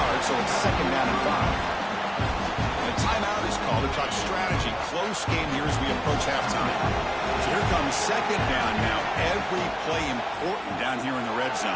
so it's 2nd down and 5. And a timeout is called to talk strategy. Close game here as we approach halftime. So here comes 2nd down now. Every play important down here in the red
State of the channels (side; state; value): both; identical; correlation 1.00